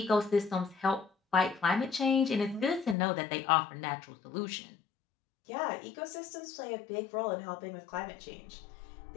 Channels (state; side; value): drops out; right; at 3.0 s